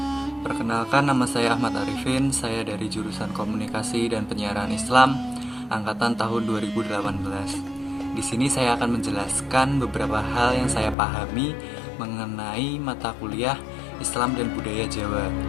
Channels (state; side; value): drops out; right; at 11.0 s